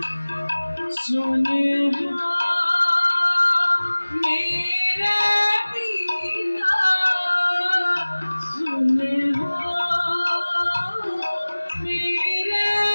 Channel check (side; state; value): both; inverted; correlation -1.00